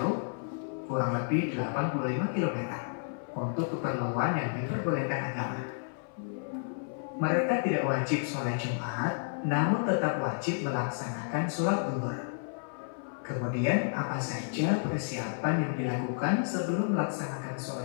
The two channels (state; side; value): silent; right; 57 dB below the other